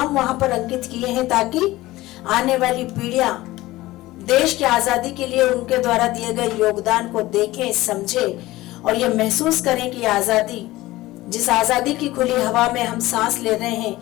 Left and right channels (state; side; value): quieter; right; 17.9 dB